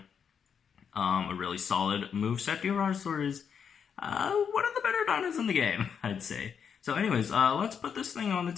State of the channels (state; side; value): quieter; right; 7.1 dB